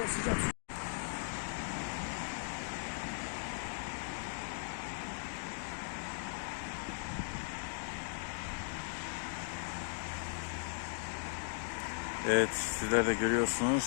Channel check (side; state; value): right; silent; digital silence